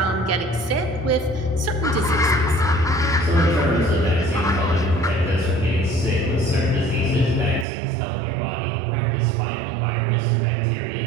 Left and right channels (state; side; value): drops out; left; at 7.7 s